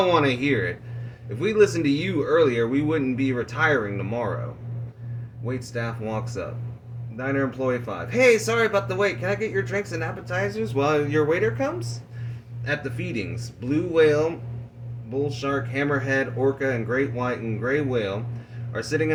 want to hear it. If we listened to you earlier, we wouldn't be retiring tomorrow. Wait staff walks up. Diner employee 5. Hey, sorry about the wait. Can I get your drinks and appetizers while your waiter comes? At the feedings, blue whale, bull shark, hammerhead, orca, and great white and gray whale are sitting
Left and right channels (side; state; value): both; identical; correlation 1.00